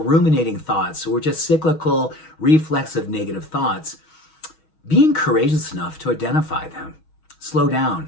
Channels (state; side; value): late; right; 6.3 ms